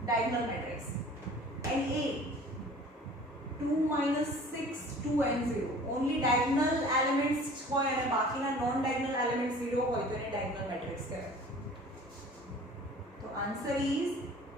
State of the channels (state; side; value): normal; both; correlation 0.46